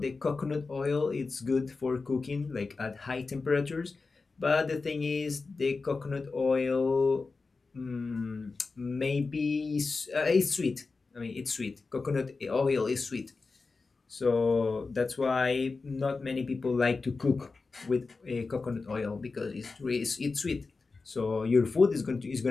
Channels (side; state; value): right; quieter; 4.1 dB